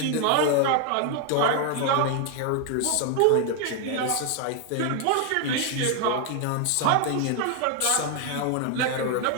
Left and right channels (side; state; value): both; different; correlation 0.00